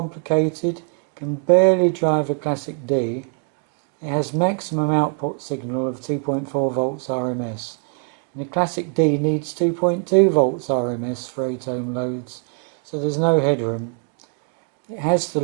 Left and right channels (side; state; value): left; quieter; 38.6 dB